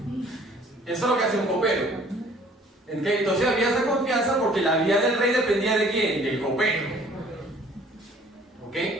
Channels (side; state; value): both; normal; correlation 0.55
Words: Eso es lo que hace un copero. Entonces había esa confianza porque la vida del rey dependía de quién? Del copero. ¿Ok?